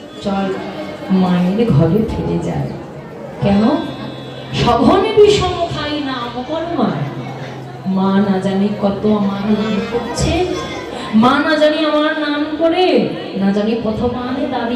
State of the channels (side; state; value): both; identical; correlation 1.00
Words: চল মায়ের ঘরে ফিরে যায়। কেন? সঘনে বিষম খাই নাম কর মায়। মা না জানি কত আমার নাম করছে, মা না জানি আমার নাম করে, না জানি প্রথমানে